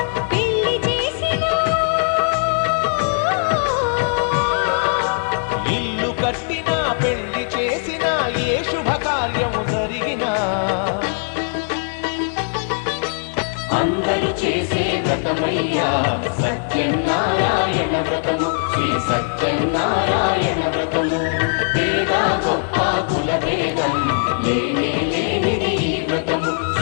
పెళ్లి చేసినా, ఇల్లు కట్టినా పెళ్లి చేసినా ఏ శుభకార్యము జరిగినా అందరూ చేసే వ్రతమయ్యా సత్యనారాయణ వ్రతము, శ్రీ సత్యనారాయణ వ్రతము. పేద గొప్ప కుల భేదం లేనే లేనిది ఈ వ్రతము,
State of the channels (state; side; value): silent; right; 66 dB below the other